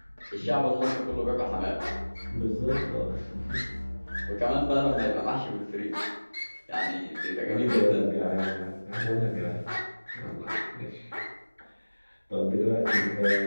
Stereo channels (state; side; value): inverted; both; correlation -1.00